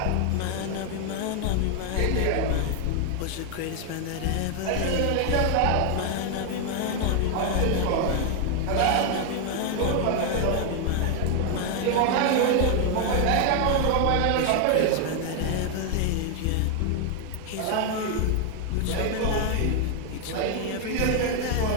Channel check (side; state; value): both; different; correlation 0.01